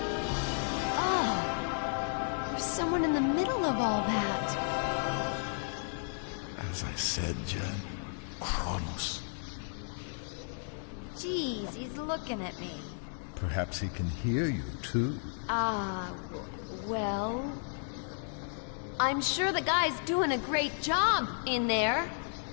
Oh! There's someone in the middle of all that. As I said, Jen, Kronos. Jeez, he's looking at me. Perhaps he can hear you, too. Well... I'm sure the guy's doing a great job in there.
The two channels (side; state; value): right; silent; 56 dB below the other